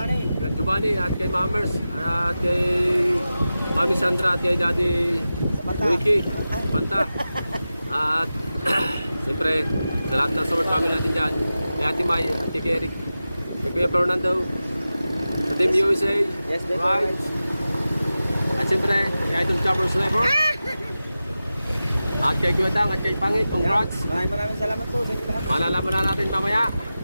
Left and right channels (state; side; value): inverted; both; correlation -0.94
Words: Kay Giovanni at kay Mamers. At kay Mami Sandra at kay Daddy Wiki. Panta. At siyempre sa lahat ng support family natin dyan. Kay Ate May at kay Eric. Kay Kuya Fernando. Sa Team USA. Yes, that's Right. At siyempre kay Idol Choppers Level. At kay Kuya Dang at kay Pangit. Congrats. Maraming salamat po sa inyo lahat. Malalaman na natin mamaya.